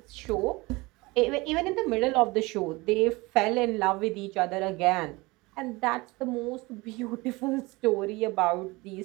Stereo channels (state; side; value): quieter; left; 23.2 dB